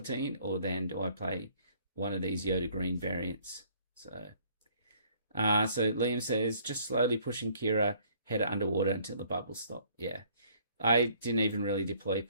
or then do I play one of these Yoda Green variants? So Liam says, just slowly pushing Kira header underwater until the bubbles stop. Yeah, I didn't even really deploy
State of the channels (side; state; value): both; inverted; correlation -0.60